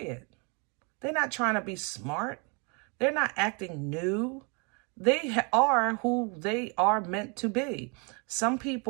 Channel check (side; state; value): left; quieter; 32.9 dB